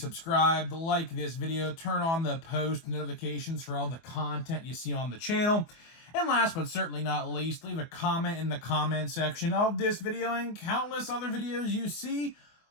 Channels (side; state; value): right; late; 24 ms